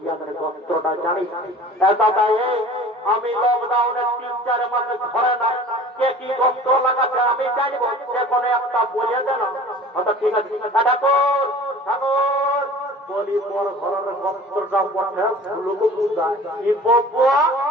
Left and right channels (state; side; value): normal; both; correlation 0.43